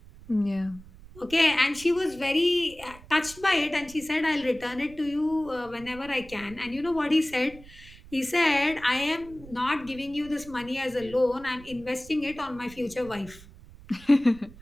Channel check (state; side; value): noise; right; rumble, 20 dB below the sound